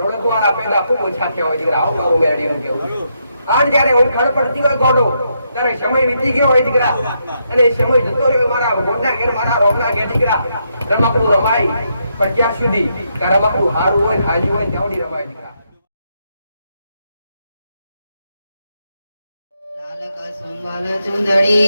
ઓળખવાના પેલા ખૂબ ઓછા થયા હોય દીકરા આવું મારું મેળવીનું કેવું આજ જયારે ઓળખાણ પડતી હોય ગોડો ત્યારે સમય વીતી ગયો હોય દીકરા અને એ સમય જતો રહ્યો મારા ગોડના ઘેર મારા રોગના ઘેર દીકરા રમકડું રમાય પણ ત્યાં સુધી રમકડું હારું હોય હાજી હોય ત્યાં રમાય દીકરા સુંબલ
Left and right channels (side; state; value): both; inverted; correlation -0.79